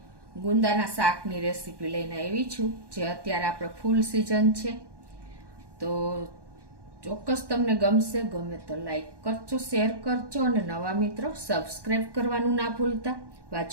ગુંદાના શાકની રેસીપી લઈને આવી છું જે અત્યારે આપણે ફૂલ સિઝન છે. તો ચોક્કસ તમને ગમશે. ગમે તો લાઈક કરજો, શેર કરજો અને નવા મિત્રો સબસ્ક્રાઈબ કરવાનું ના ભૂલતા.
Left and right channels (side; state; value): left; late; 1.1 ms